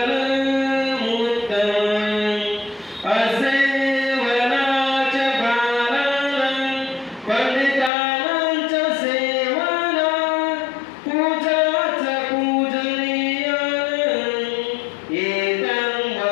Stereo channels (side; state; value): right; drops out; at 7.9 s